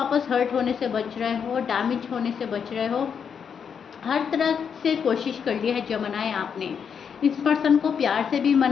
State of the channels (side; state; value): right; quieter; 7.0 dB